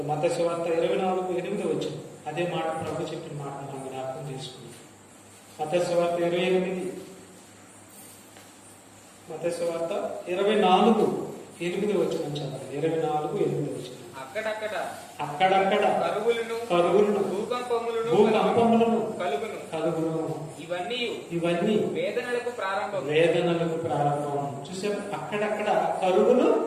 మత్తయి సువార్త 24:8 వచ్చింది. అదే మాట ప్రభు చెప్పిన మాట మనం జ్ఞాపకం చేసుకుంది. మత్తయి సువార్త 28, మత్తయి సువార్త 24:8 వచ్చిన చదవండి. 24:8 వచ్చింది. అక్కడక్కడ కరువులను భూకంపములను కలుగును. ఇవన్నీ వేదనలకు ప్రారంభం. చూసారు, అక్కడక్కడ కరువులు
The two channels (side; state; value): both; identical; correlation 1.00